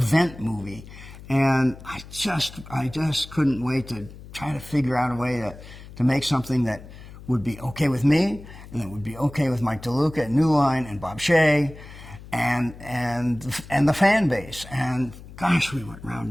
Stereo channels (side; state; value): left; noise; hum, 17 dB below the sound